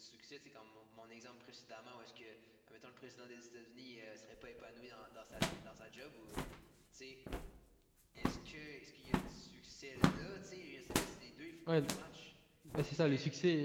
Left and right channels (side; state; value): both; identical; correlation 1.00